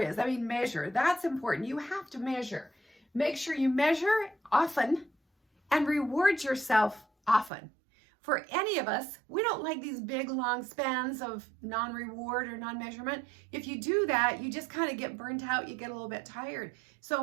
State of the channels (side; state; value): left; drops out; at 7.5 s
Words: I mean, measure. That's important. You have to measure. Make sure you measure often and reward yourself often. For any of us, we don't like these big, long spans of non-reward or non-measurement. If you do that, you just kind of get burnt out. You get a little bit tired.